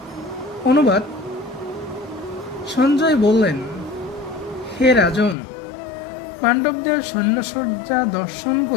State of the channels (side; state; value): right; drops out; at 5.4 s